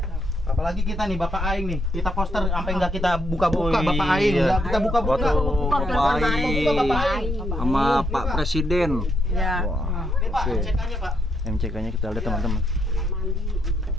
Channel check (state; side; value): normal; both; correlation 0.77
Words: Apalagi kita nih Bapak Aing nih. Kita poster sampai nggak kita buka-buka Oh, Bapak Aing. iya. Nggak kita buka-buka. Bapak Aing. Bapak Aing. Sama Pak Presiden. Ya. Wah. Ini Pak, Oke. MCK-nya Pak. MCK-nya kita lihat teman-teman.